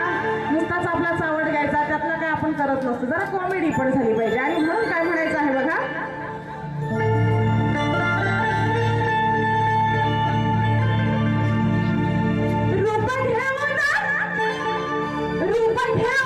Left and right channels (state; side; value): identical; both; correlation 1.00